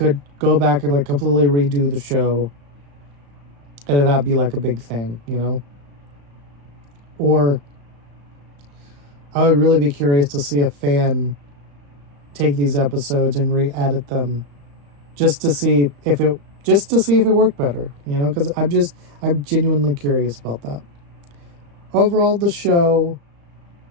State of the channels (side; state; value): left; late; 35 ms